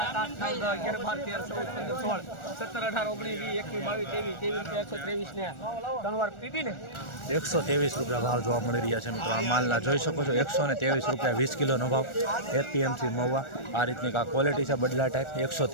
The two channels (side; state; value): right; late; 1.4 ms